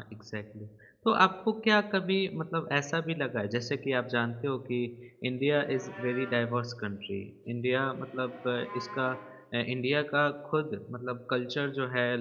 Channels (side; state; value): both; identical; correlation 1.00